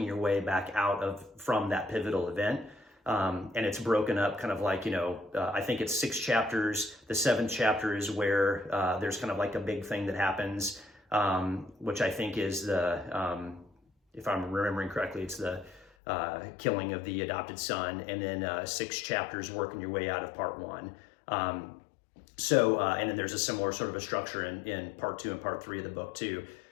your way back out from that pivotal event. And it's broken up kind of like, I think it's 6 chapters. The 7th chapter is where there's kind of like a big thing that happens, which I think is if I'm remembering correctly, it's the killing of the adopted son, and then 6 chapters working your way out of part 1. And then there's a similar sort of a structure in part 2 and part 3 of the book too.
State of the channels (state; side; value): drops out; right; at 15.9 s